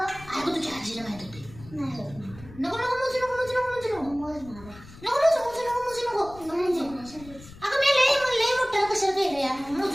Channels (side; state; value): left; noise; rumble, 19 dB below the sound